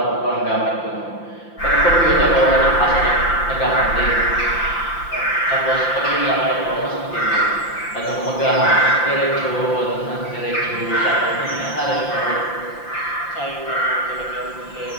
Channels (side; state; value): right; late; 5.8 ms